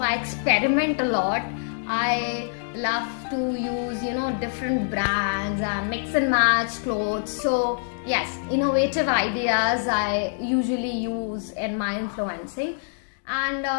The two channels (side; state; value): right; silent; digital silence